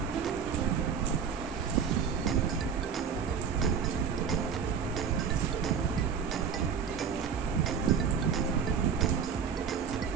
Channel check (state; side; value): quieter; left; 6.9 dB